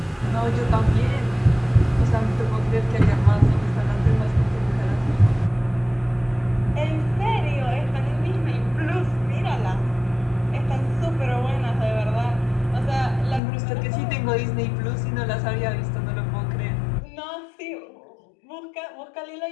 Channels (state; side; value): drops out; right; at 13.4 s